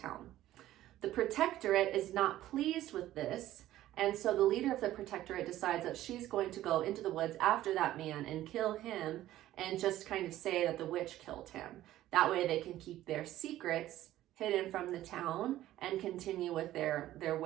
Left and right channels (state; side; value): quieter; left; 14.2 dB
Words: The Protectorate is not pleased with this, and so the leader of the Protectorate decides that she's going to go into the woods after that man and kill him and just kind of say that the witch killed him. That way they can keep their secrets hidden from the town and continue with their